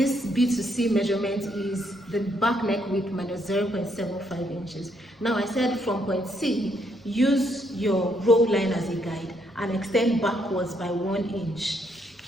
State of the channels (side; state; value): both; normal; correlation 0.73